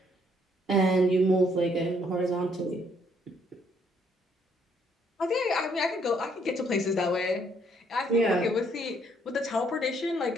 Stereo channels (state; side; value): normal; both; correlation 0.68